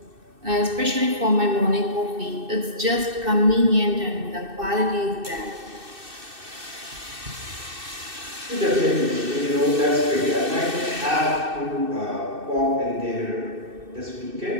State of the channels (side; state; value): left; late; 2.6 ms